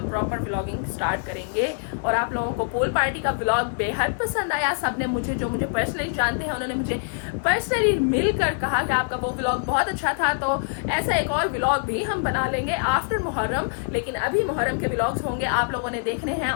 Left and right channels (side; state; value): right; silent; 62 dB below the other